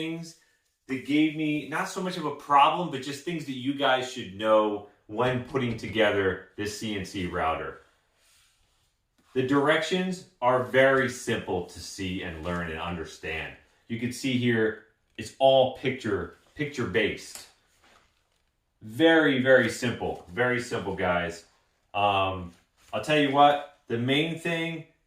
that gave me not so much of a problem, but just things that you guys should know when putting together this CNC router. The directions are very simple to see and learn and understand. You can see here, it's all picture based. Very simple, guys. I'll tell you what, the main thing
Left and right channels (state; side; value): identical; both; correlation 1.00